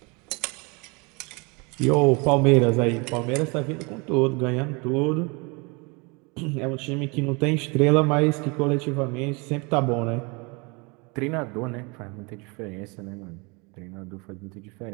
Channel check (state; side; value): quieter; left; 29.4 dB